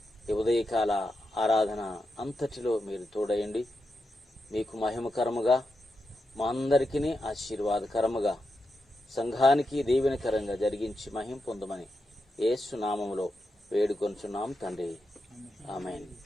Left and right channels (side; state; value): both; normal; correlation 0.87